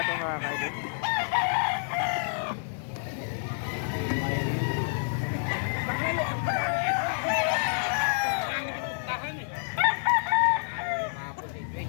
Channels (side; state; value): right; silent; digital silence